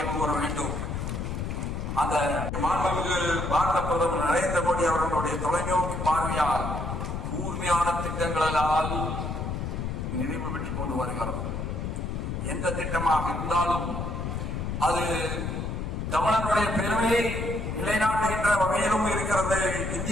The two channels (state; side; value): noise; left; rumble, 3 dB below the sound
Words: கூற வேண்டும். அந்த மாண்புமிகு பாரத பிரதமர் நரேந்திர மோடி அவர்களுடைய தொலைநோக்கு பார்வையால் கூர்மையான திட்டங்களால் நிறைவு பெற்றுக் கொண்டு வருகிறது. எந்த திட்டமாக இருந்தாலும் அது தமிழனுடைய பெருமையை நிலைநாட்டுகின்ற வகையிலும் இருக்கிறது,